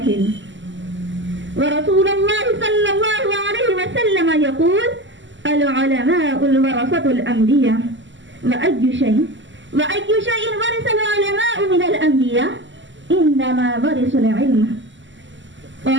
ورسول الله صلى الله عليه وسلم يقول العلماء الورثة الأنبياء وأي شيء ورث العلماء من الأنبياء إنما ورثوا العلم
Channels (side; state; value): left; late; 0.54 ms